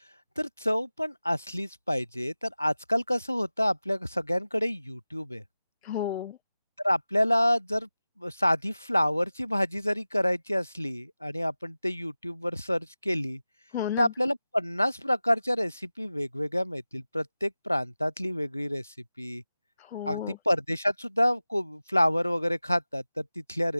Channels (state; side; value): inverted; both; correlation -0.96